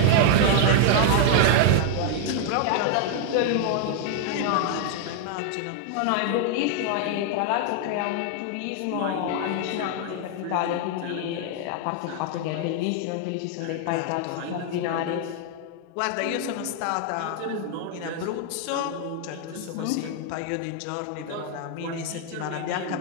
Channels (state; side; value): different; both; correlation 0.00